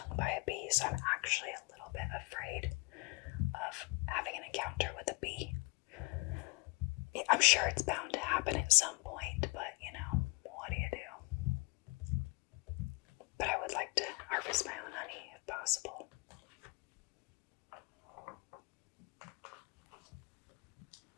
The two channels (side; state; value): right; quieter; 27.8 dB